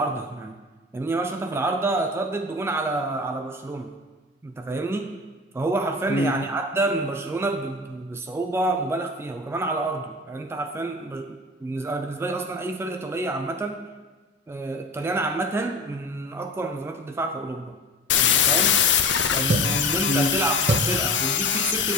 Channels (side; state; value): both; normal; correlation 0.35